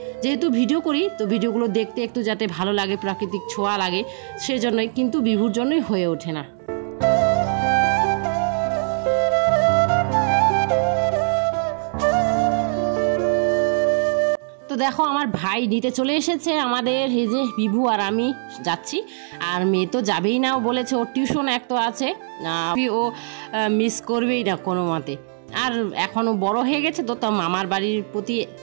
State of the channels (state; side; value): silent; left; digital silence